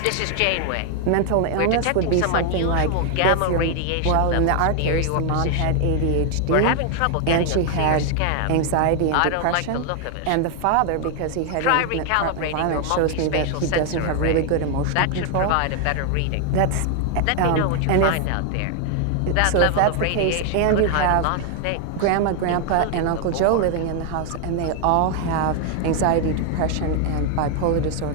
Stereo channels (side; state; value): both; different; correlation 0.00